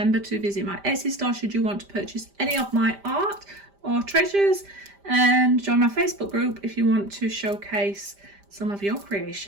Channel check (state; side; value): late; left; 5.0 ms